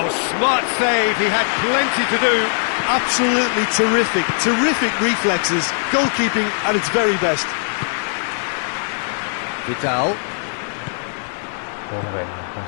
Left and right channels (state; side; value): silent; right; digital silence